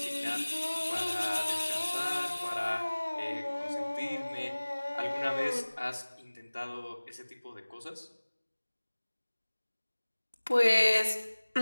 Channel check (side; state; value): both; inverted; correlation -1.00